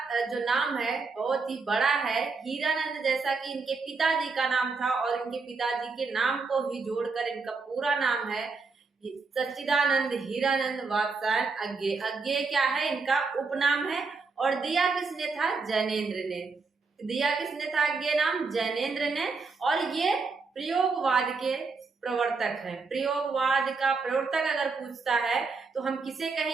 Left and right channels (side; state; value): left; quieter; 4.4 dB